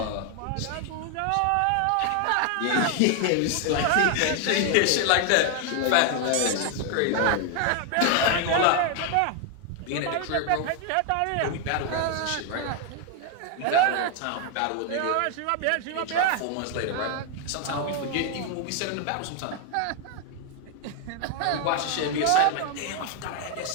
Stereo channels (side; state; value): both; different; correlation 0.01